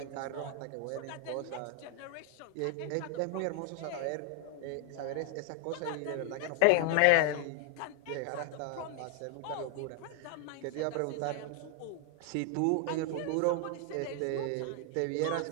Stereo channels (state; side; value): different; both; correlation 0.00